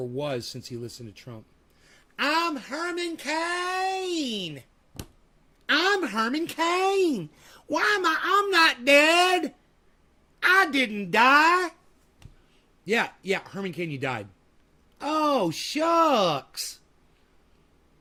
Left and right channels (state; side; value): identical; both; correlation 1.00